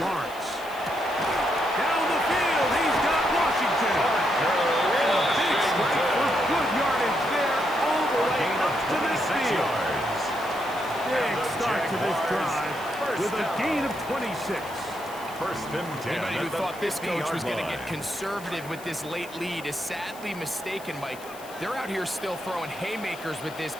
Down the field, he's got Washington. And a big strike for good yardage there all the way up to midfield. Big start to this drive with a gain of 26. First and 10. Anybody who thought this coach was going to get conservative with this late lead is sadly mistaken, Mike. They're out here still throwing haymakers with this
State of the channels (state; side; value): noise; left; hiss, 19 dB below the sound